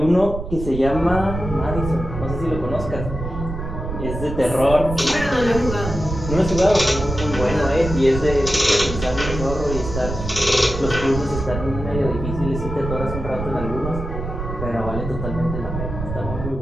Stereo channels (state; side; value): noise; right; rumble, 6 dB below the sound